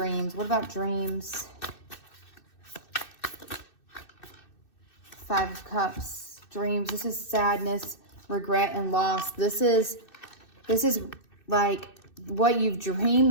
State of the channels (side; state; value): right; late; 2.6 ms